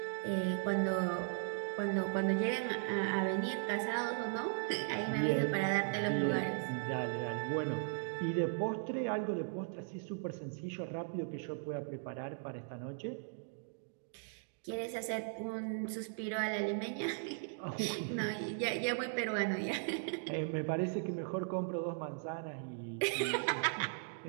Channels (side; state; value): left; silent; digital silence